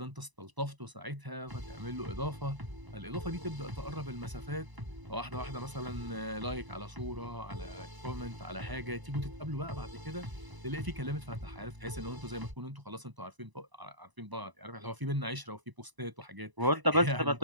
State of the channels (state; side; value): late; left; 1.0 ms